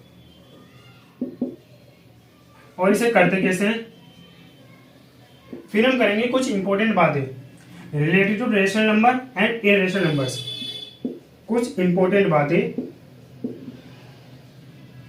और इसे करते कैसे हैं। फिर हम करेंगे कुछ इंपॉर्टेंट बातें related to rational number and irrational numbers. कुछ इंपॉर्टेंट बातें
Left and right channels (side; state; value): both; identical; correlation 1.00